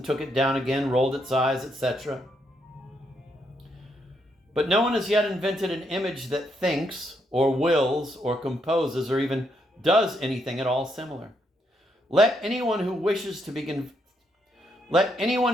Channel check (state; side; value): normal; both; correlation 0.77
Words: took it down again, rolled its eyes, etc. But no one has yet invented an image that thinks, or wills, or composes, or even does anything at all similar. Let anyone who wishes to be